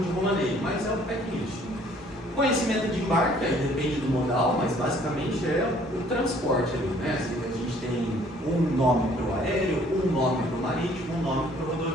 de romaneio, mas é o packlist. Conhecimento de embarque, aí depende do modal, mas basicamente é o transporte ali, né? Assim, a gente tem um nome para o aéreo, um nome para o marítimo, um nome para o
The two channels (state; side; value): noise; left; rumble, 27 dB below the sound